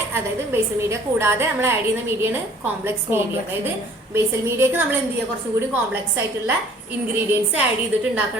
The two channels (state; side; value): normal; both; correlation 0.53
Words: അതായത് ബേസൽ മീഡിയ കൂടാതെ നമ്മൾ ആഡ് ചെയ്യുന്ന മീഡിയയാണ് കോംപ്ലക്സ് മീഡിയ. അതായത് ബേസൽ മീഡിയക്ക് നമ്മൾ എന്ത് ചെയ്യുക, കുറച്ചും കൂടി കോംപ്ലക്സ് ആയിട്ടുള്ള ഇൻഗ്രീഡിയൻസ് ആഡ് ചെയ്തിട്ട്